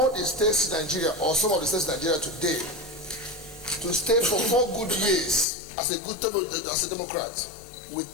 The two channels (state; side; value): drops out; right; at 5.5 s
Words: the states in Nigeria, or some of the states in Nigeria today, to stay for 4 good years as a Democrat